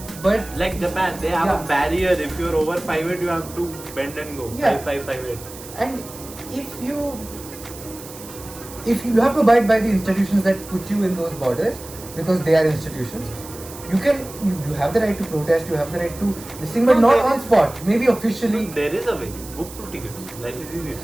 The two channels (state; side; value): noise; right; hiss, 16 dB below the sound